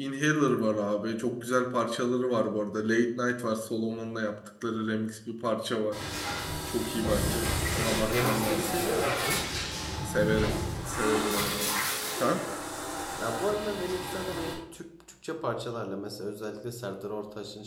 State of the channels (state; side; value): identical; both; correlation 1.00